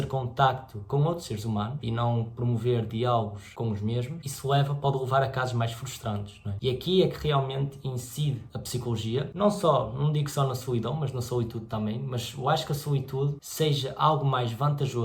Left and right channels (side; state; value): both; identical; correlation 1.00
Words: contacto com outros seres humanos e não promover diálogos com os mesmos, isso pode levar a casos mais frustrantes, não é? E aqui é que realmente incide a psicologia, não digo só na solidão, mas na solitude também, mas eu acho que a solitude seja algo mais